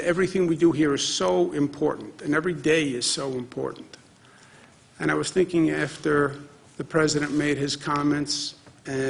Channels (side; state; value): both; identical; correlation 1.00